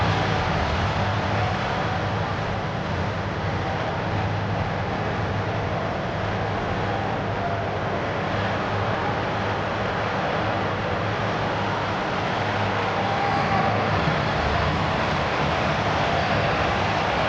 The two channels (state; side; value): identical; both; correlation 1.00